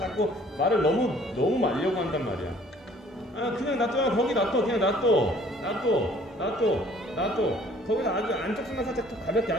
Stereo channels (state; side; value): normal; both; correlation 0.56